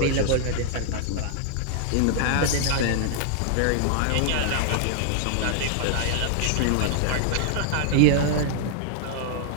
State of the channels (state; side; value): different; both; correlation -0.01